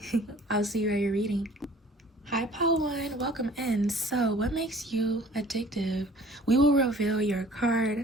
I'll see you at your reading. Hi Pile 1, welcome in. So what makes you addictive? We will reveal your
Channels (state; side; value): normal; both; correlation 0.51